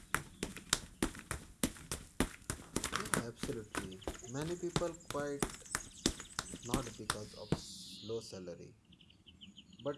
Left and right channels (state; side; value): identical; both; correlation 1.00